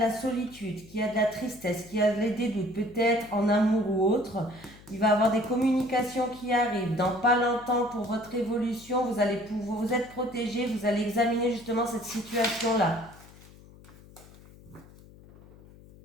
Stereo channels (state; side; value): noise; left; hum, 22 dB below the sound